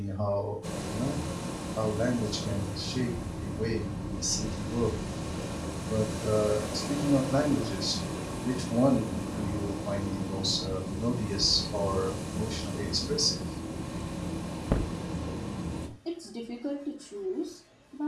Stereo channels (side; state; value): both; identical; correlation 1.00